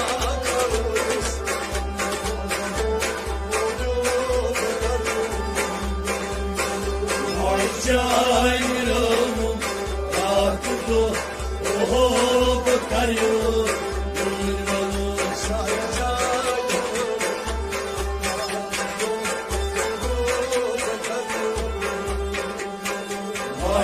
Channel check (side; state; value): both; identical; correlation 1.00